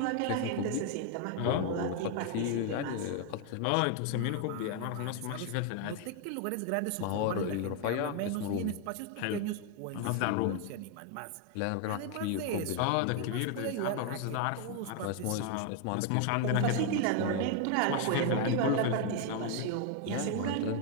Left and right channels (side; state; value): both; different; correlation 0.01